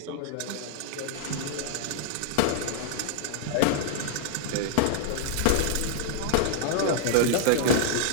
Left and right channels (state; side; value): different; both; correlation -0.01